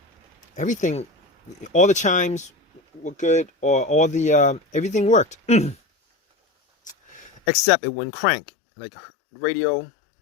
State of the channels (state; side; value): drops out; right; at 7.4 s